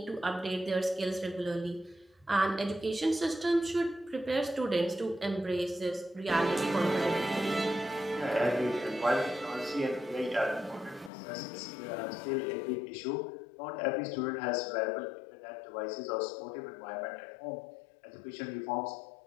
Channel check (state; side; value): drops out; right; at 11.1 s